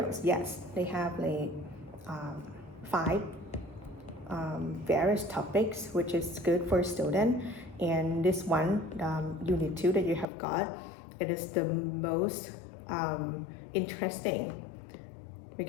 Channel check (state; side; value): drops out; right; at 10.2 s